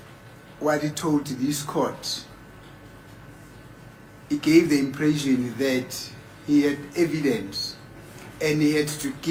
what he told this court, he gave the impression that he had evidence and he had to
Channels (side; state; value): both; identical; correlation 1.00